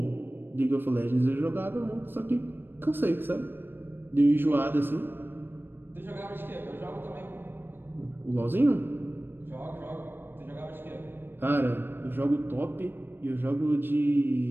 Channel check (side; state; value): left; late; 0.098 ms